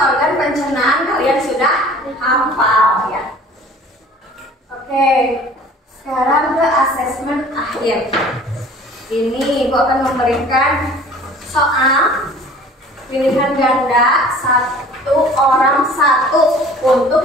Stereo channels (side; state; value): both; normal; correlation 0.48